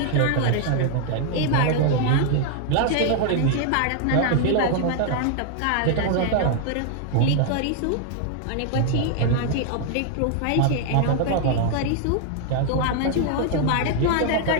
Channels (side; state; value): both; different; correlation 0.00